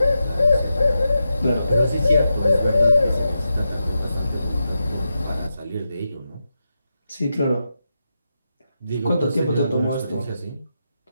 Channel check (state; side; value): inverted; both; correlation -0.88